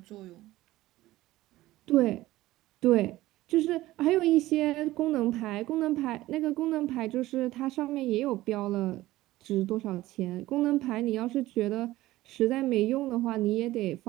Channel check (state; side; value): quieter; left; 16.7 dB